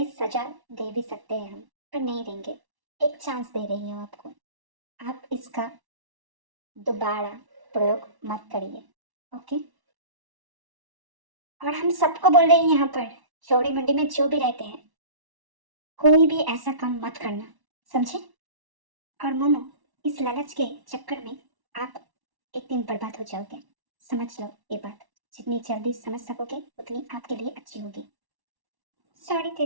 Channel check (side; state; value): left; late; 1.1 ms